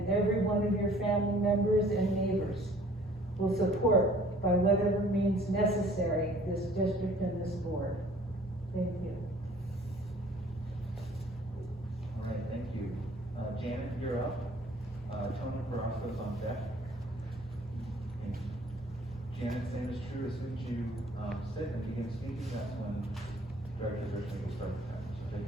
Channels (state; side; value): normal; both; correlation 0.54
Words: every one of your family members and neighbors will support by whatever means necessary this district and this board. Thank you. All right, thank you. Janet, you're up. Tony Carrasco's on deck. Thank you. Janet's name is true, as soon as you, sit and begin speaking, that's when Director Richmond will start the timer, so take